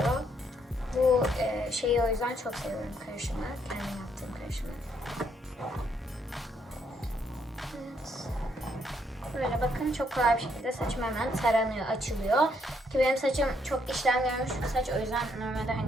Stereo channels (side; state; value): both; normal; correlation 0.72